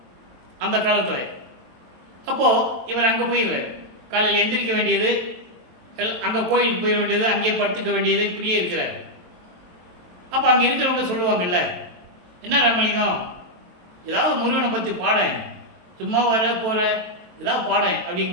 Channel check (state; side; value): late; left; 23 ms